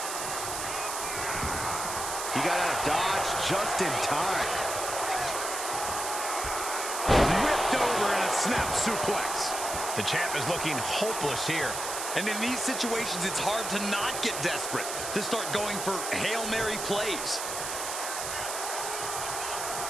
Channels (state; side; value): noise; right; hiss, 4 dB below the sound